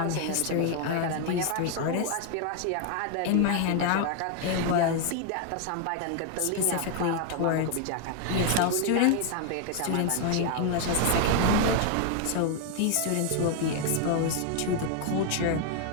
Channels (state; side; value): different; both; correlation 0.00